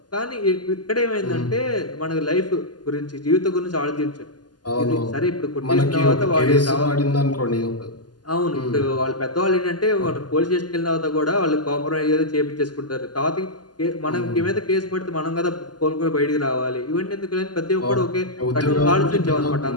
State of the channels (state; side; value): late; right; 0.70 ms